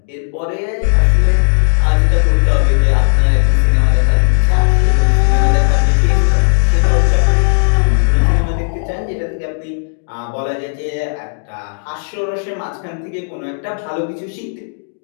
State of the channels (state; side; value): silent; right; digital silence